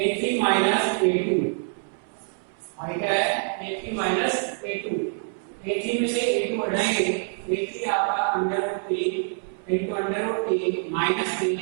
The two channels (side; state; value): left; silent; 61 dB below the other